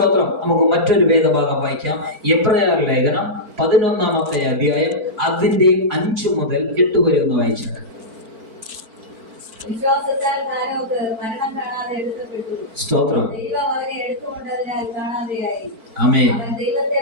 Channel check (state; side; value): late; left; 4.5 ms